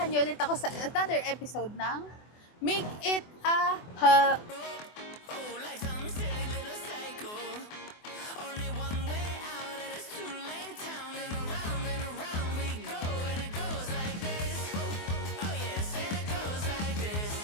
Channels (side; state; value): right; late; 24 ms